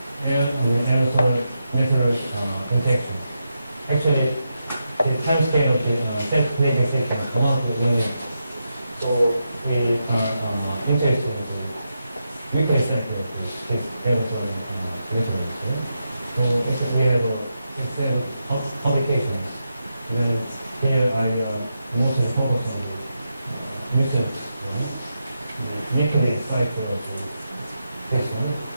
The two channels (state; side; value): inverted; both; correlation -0.86